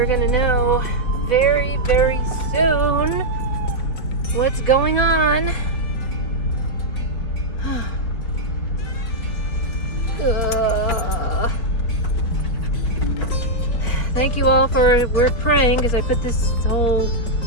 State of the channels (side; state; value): right; late; 4.3 ms